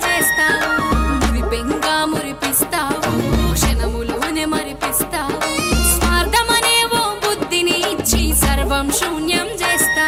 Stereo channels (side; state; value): both; identical; correlation 1.00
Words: చేస్తావు మురిపెంగా మురిపిస్తావు క్షణములోనే మరిపిస్తావు స్వార్థమనే ఓ బుద్ధిని ఇచ్చి సర్వం శూన్యం